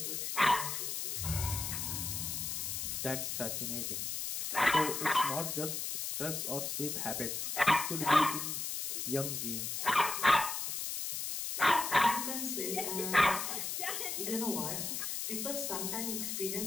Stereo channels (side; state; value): left; noise; hiss, 2 dB below the sound